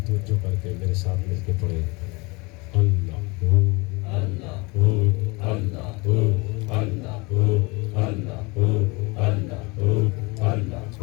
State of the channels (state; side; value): quieter; right; 26.7 dB